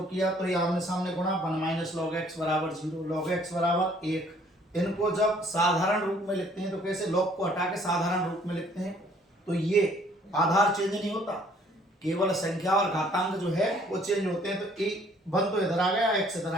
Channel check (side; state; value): both; normal; correlation 0.60